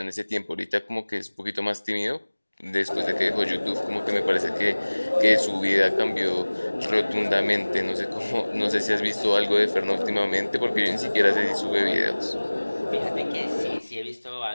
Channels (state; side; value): inverted; both; correlation -1.00